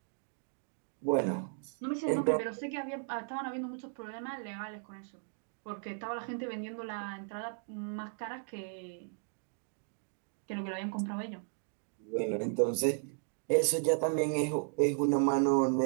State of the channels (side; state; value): left; silent; 54 dB below the other